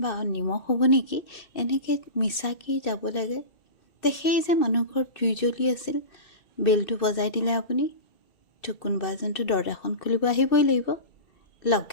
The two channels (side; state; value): right; late; 2.6 ms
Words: বা নিমখ হ'ব নেকি, এনেকৈ মিছাকৈ যাব লাগে। সেই যে মানুহ ঘৰত জুই জ্বলি আছিল, বেলটো বজাই দিলে আপুনি, তো কোনোবা এজনতো দৰজাখন খুলিব আহিবই লাগিব।